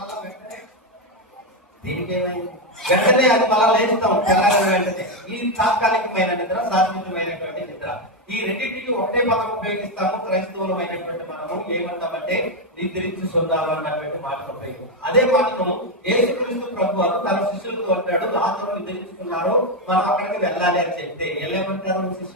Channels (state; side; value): normal; both; correlation 0.06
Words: వెంటనే అది మళ్ళా లేస్తాం తెల్లారిన వెంటనే. ఈ తాత్కాలికమైన నిద్ర, శాశ్వతమైనటువంటి నిద్ర. ఈ రెండింటికి ఒకటే పదం ఉపయోగిస్తాము. క్రైస్తవులమైనటువంటి మనము ఏమంటామంటే నిద్రించుకుందాము అన్నటువంటి మాట ఉపయోగం. అదే మాటను యేసుక్రీస్తు ప్రభువారు తన శిష్యులతో అంటాడు, లాజరు నిద్రించుకున్నారు, మనం అక్కడికి వెళ్ళాలి అని చెప్తే ఏమంటారు?